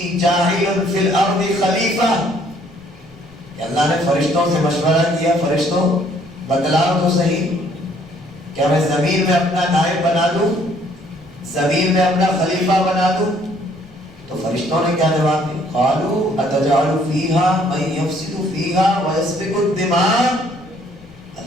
جَاعِلٌ فِي الْأَرْضِ خَلِيفَةً، کہ اللہ نے فرشتوں سے مشورہ کیا، فرشتوں بتلاؤ تو صحیح، کیا میں زمین میں اپنا نائب بنا دوں، زمین میں اپنا خلیفہ بنا دوں؟ تو فرشتوں نے کیا جواب دیا؟ قالوا اتجعل فیہا من یفسد فیہا ویسفک الدماء،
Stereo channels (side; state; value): left; noise; rumble, 25 dB below the sound